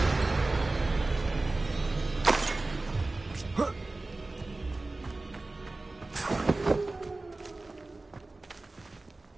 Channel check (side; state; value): left; quieter; 3.1 dB